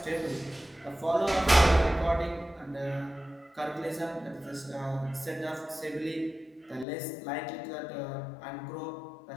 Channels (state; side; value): drops out; right; at 6.9 s